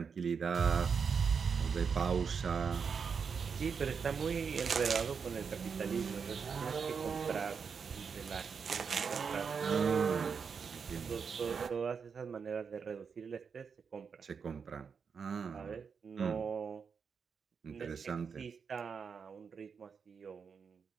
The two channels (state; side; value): quieter; left; 6.0 dB